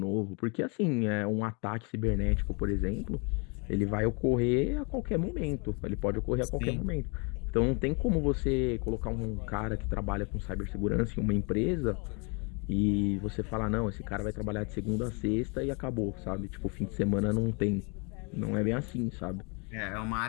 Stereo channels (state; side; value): quieter; right; 33.1 dB